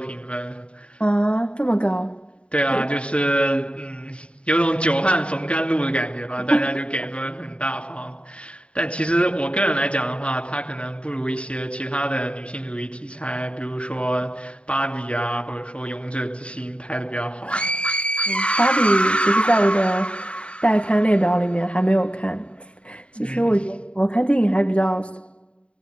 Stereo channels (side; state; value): right; late; 0.058 ms